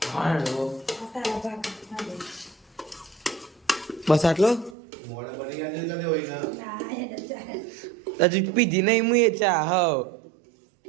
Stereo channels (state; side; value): drops out; left; at 4.8 s